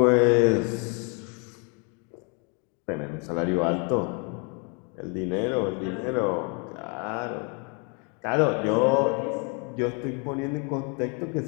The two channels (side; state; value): right; quieter; 35.5 dB